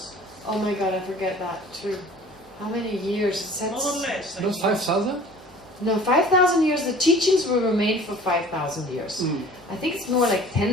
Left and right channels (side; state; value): both; normal; correlation 0.47